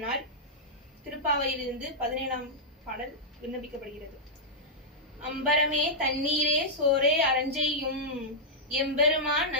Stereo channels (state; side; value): normal; both; correlation -0.08